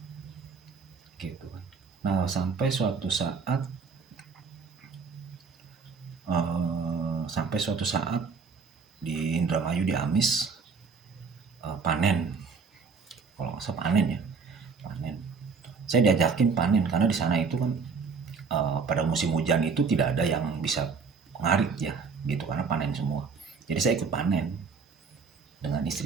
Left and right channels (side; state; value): left; quieter; 5.2 dB